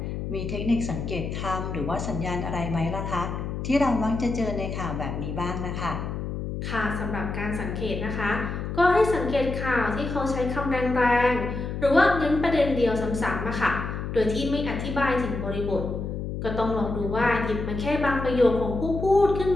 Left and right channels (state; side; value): noise; left; hum, 5 dB below the sound